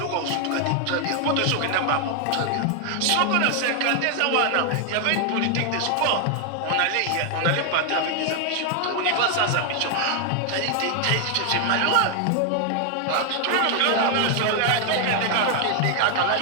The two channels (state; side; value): different; both; correlation 0.00